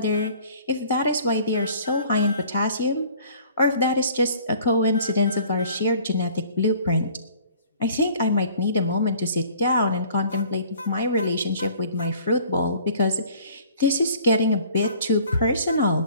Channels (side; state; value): both; inverted; correlation -0.52